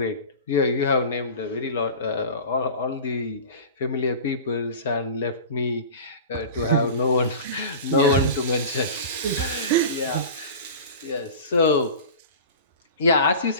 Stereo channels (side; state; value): both; inverted; correlation -0.35